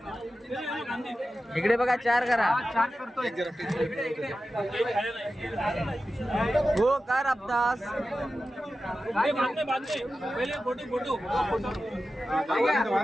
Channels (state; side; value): normal; both; correlation 0.93